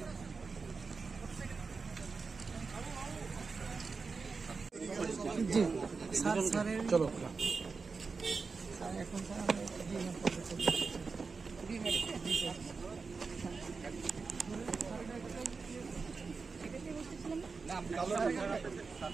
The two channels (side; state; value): left; quieter; 4.6 dB